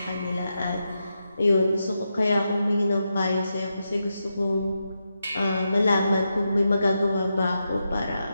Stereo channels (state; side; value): inverted; both; correlation -0.86